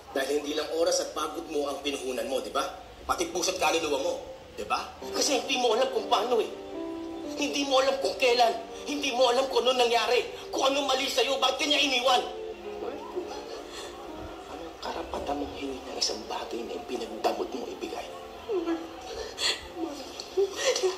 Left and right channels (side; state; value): both; identical; correlation 1.00